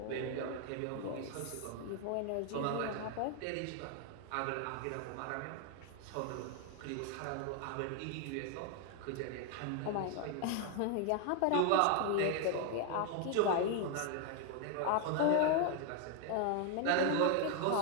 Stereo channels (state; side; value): different; both; correlation 0.00